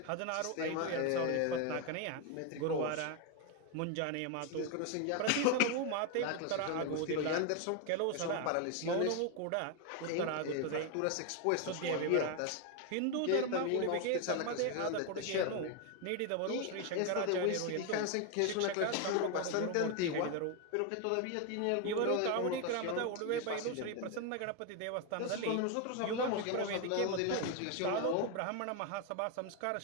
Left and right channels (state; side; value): different; both; correlation 0.01